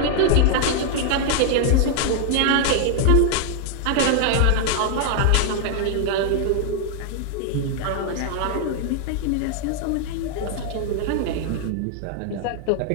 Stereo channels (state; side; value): different; both; correlation 0.00